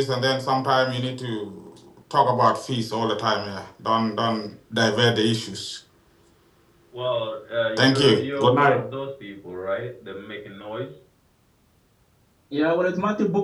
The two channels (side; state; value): both; identical; correlation 1.00